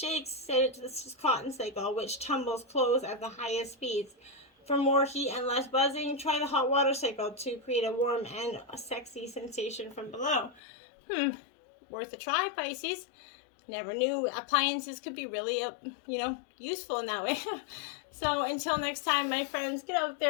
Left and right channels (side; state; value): right; drops out; at 10.6 s